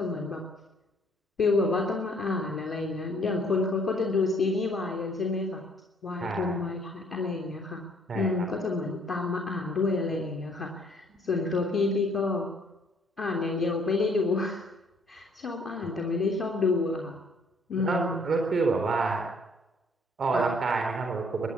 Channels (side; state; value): both; normal; correlation 0.62